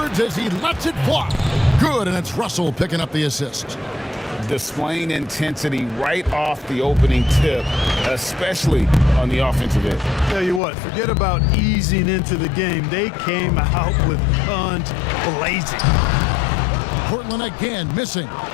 as he lets it fly. Good, and it's Russell picking up the assist. Displaying intensity right off the opening tip, especially on the offensive end. Tell you what, forget about easing into the game. They came out with guns blazing. Portland again missing.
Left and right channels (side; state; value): right; drops out; at 10.6 s